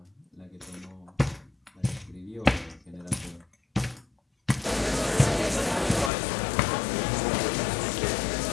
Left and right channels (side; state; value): right; drops out; at 6.1 s